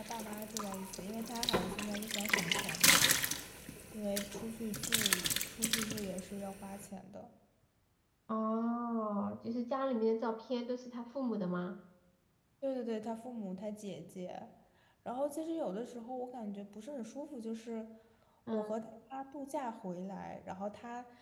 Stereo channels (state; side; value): identical; both; correlation 1.00